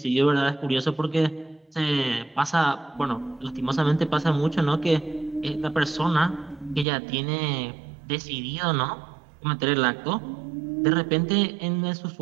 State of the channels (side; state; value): left; drops out; at 6.9 s